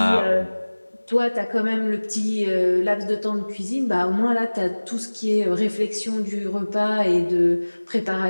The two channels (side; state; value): both; inverted; correlation -1.00